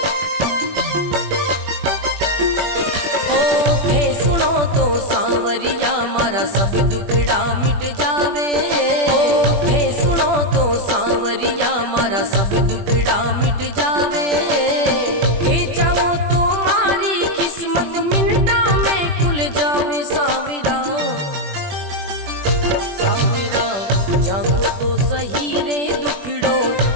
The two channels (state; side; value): late; left; 21 ms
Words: सांवरिया मारा सब दुखड़ा मिट जावे, थे सुनो तो सांवरिया मारा सब दुखड़ा मिट जावे, थे चाहो तो मारी किस्मत मिनटा में खुल जावे। सांवरा सांवरा जागो तो सही रे दुखड़ो